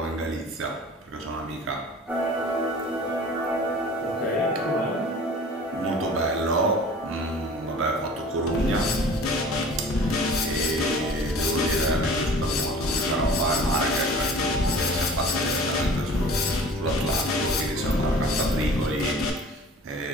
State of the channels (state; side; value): normal; both; correlation 0.44